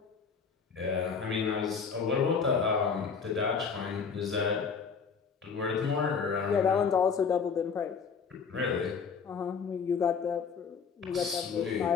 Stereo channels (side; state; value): right; quieter; 5.9 dB